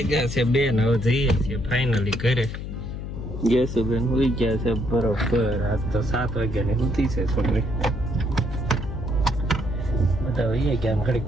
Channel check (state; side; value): noise; left; hum, 7 dB below the sound